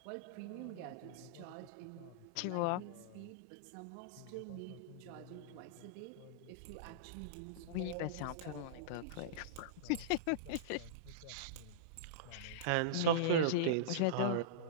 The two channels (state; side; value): different; both; correlation -0.04